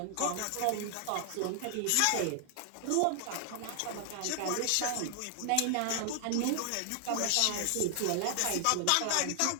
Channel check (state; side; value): different; both; correlation 0.00